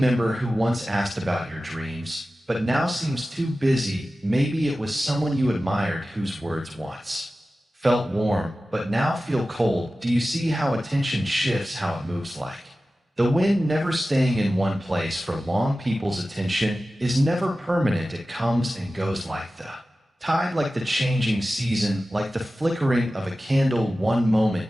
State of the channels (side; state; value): both; normal; correlation 0.95